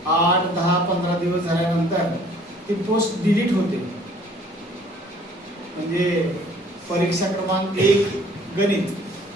8, 10, 15 दिवस झाल्यानंतर ती पोस्ट डिलीट होते. म्हणजे परीक्षा क्रमांक 1 गणित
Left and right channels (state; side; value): normal; both; correlation 0.56